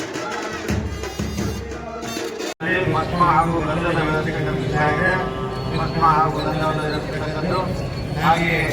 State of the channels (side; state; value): both; identical; correlation 1.00